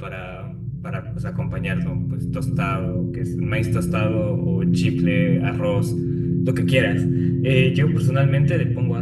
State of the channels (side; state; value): both; identical; correlation 1.00